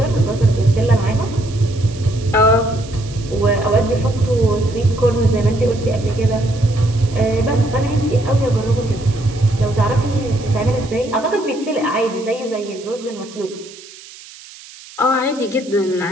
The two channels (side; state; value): right; noise; hiss, 19 dB below the sound